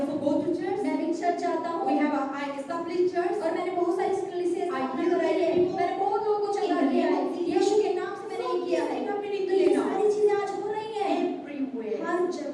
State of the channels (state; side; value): identical; both; correlation 1.00